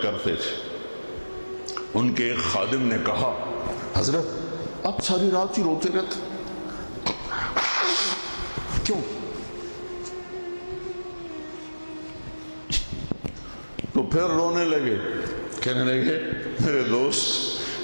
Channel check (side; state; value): both; inverted; correlation -1.00